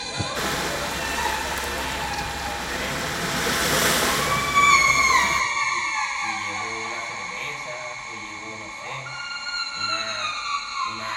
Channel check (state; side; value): identical; both; correlation 1.00